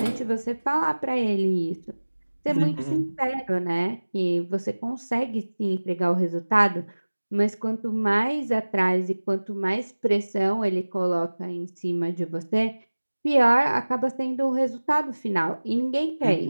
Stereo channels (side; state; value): both; inverted; correlation -1.00